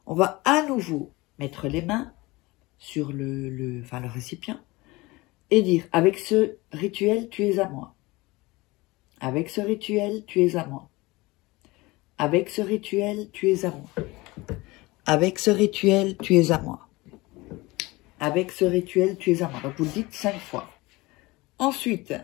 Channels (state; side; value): quieter; right; 21.9 dB